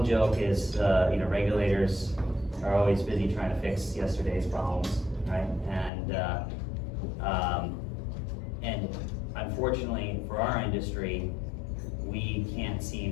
joke is, regulators are always busy trying to fix yesterday's problems, right? And unfortunately for our industry, we can't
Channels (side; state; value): right; drops out; at 5.9 s